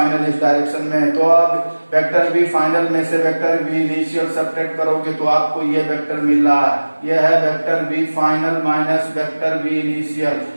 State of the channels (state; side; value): inverted; both; correlation -1.00